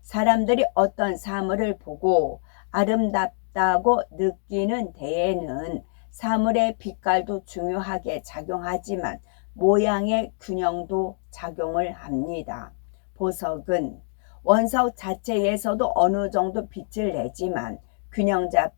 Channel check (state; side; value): silent; right; digital silence